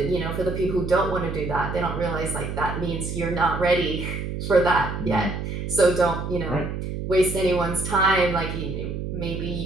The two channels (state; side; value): noise; right; hum, 5 dB below the sound